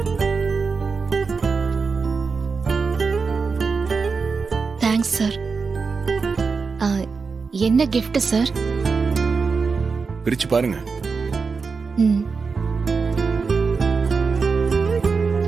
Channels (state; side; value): quieter; left; 4.9 dB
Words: Thanks sir. என்ன கிஃப்ட் சார்? பிரிச்சு பாருங்க. ம்,